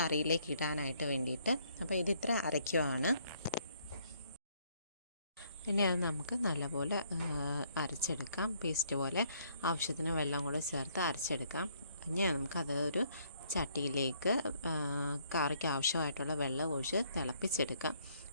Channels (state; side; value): inverted; both; correlation -0.67